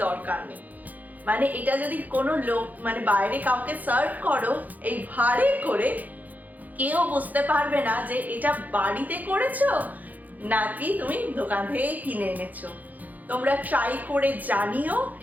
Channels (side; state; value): left; late; 0.081 ms